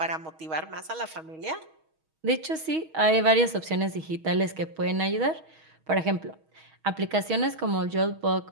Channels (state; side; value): late; left; 6.3 ms